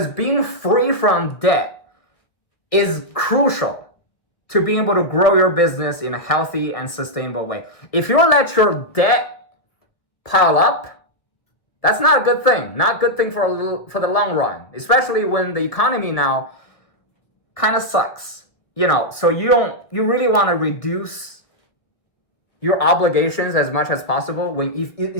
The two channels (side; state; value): right; late; 1.8 ms